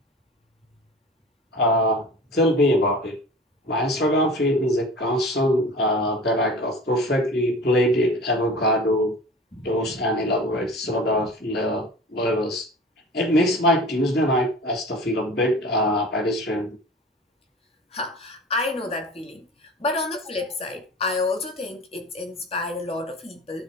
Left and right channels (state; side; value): normal; both; correlation 0.38